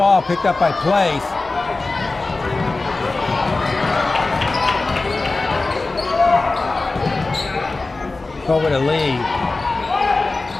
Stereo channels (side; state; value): right; quieter; 3.4 dB